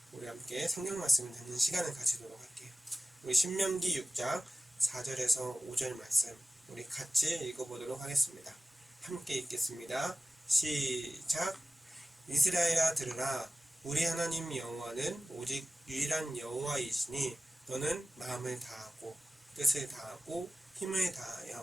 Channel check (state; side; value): normal; both; correlation 0.96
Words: 우리 함께 성경 말씀을 듣는 시간을 가지도록 할게요. 우리 신명기 6장 4절에서 5절 말씀 우리 같이 읽어보도록 하겠습니다. 함께 읽겠습니다. 시작. 이스라엘아 들으라. 우리 하나님 여호와는 오직 유일한 여호와이시니 너는 마음을 다하고 뜻을 다하고 힘을